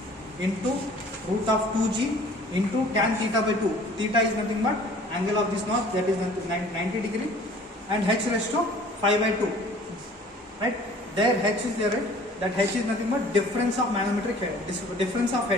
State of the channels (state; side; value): normal; both; correlation 0.50